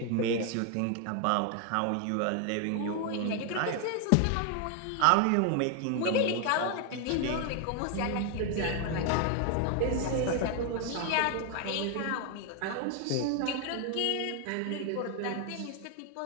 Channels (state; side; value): different; both; correlation 0.01